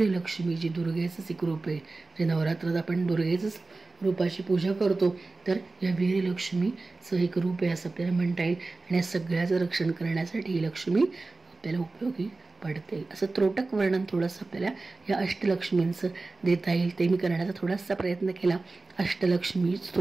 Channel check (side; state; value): left; quieter; 3.4 dB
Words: जी दुर्गेचंच एक रूप आहे. जे नवरात्रात आपण दुर्गेचंच रूपाची पूजा करतो तर या वीरलक्ष्मीचं एक रूप आहे असं आपल्याला म्हणता येईल. आणि या सगळ्याचं रक्षण करण्यासाठी ही लक्ष्मी आपल्याला उपयोगी पडते. असं त्रोटक वर्णन थोडंसं आपल्याला या अष्टलक्ष्मींचं देता येईल, ते मी करण्याचा थोडासा प्रयत्न केला. अष्टलक्ष्मी